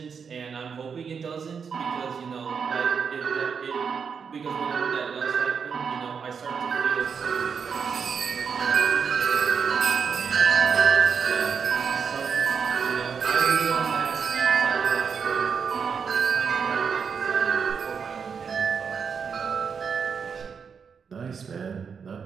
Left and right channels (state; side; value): quieter; left; 6.3 dB